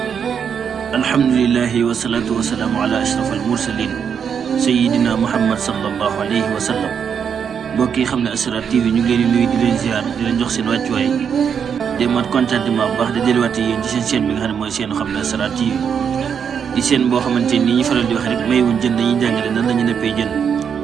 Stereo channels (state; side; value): quieter; left; 7.3 dB